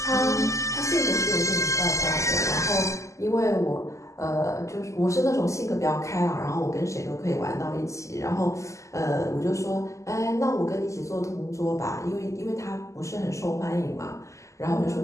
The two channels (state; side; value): late; right; 0.15 ms